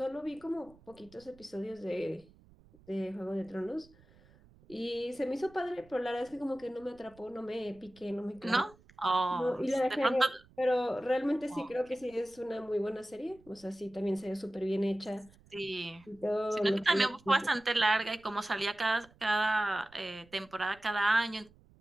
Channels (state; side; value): noise; right; rumble, 27 dB below the sound